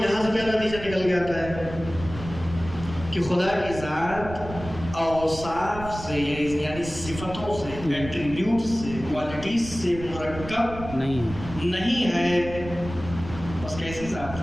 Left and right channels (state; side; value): noise; right; rumble, 12 dB below the sound